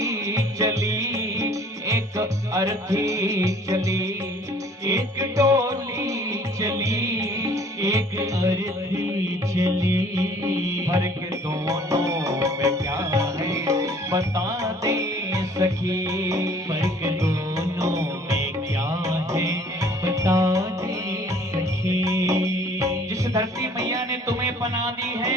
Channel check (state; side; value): normal; both; correlation 0.54